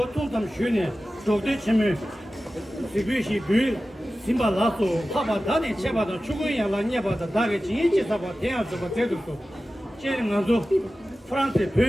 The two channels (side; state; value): both; normal; correlation 0.95